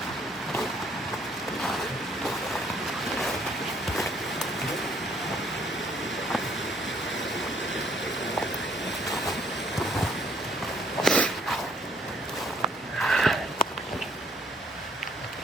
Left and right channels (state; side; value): normal; both; correlation 0.65